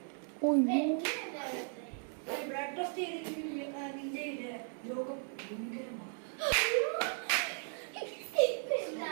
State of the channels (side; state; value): left; silent; 54 dB below the other